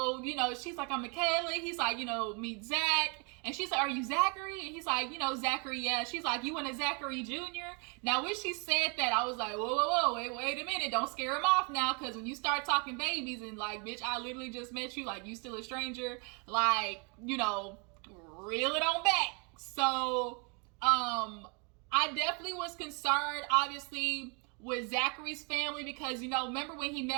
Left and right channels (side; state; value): left; quieter; 34.0 dB